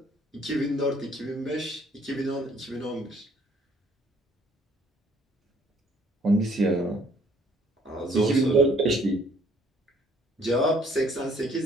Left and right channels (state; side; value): normal; both; correlation 0.61